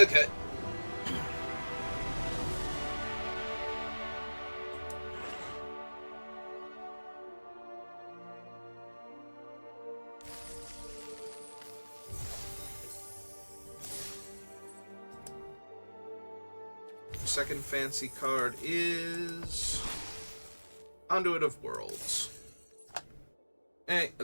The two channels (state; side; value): inverted; both; correlation -1.00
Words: Second fancy card is Conduit of Worlds. Hey,